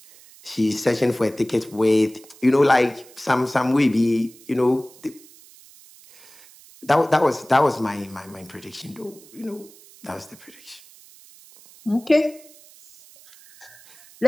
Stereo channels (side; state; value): right; noise; hiss, 23 dB below the sound